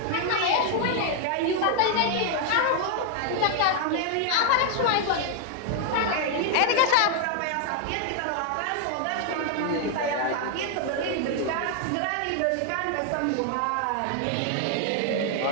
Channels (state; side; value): different; both; correlation 0.00